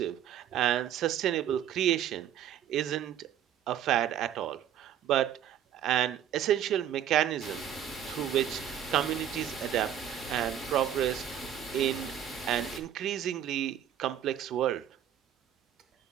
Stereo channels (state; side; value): quieter; left; 10.0 dB